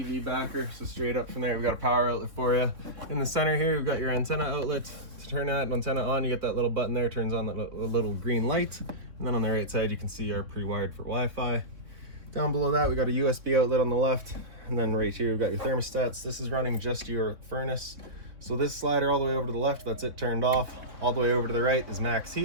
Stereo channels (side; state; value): left; late; 3.4 ms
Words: backer. So straight up from there, we've got a power outlet for you. In the center here, we've got your antenna outlet. To turn that antenna on, you get that little button there, turns on the little green light. And then on the right side, you can see our pre-wired for Wi-Fi. Down below that, we got a USB outlet on the left. And then right here, we've got your thermostats. This is running just your furnace. So this slider all the way over to the left, that's it turned off. All the way over to the right is max